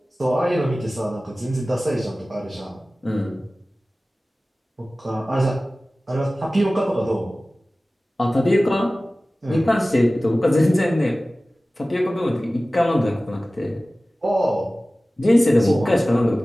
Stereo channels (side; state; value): both; normal; correlation 0.97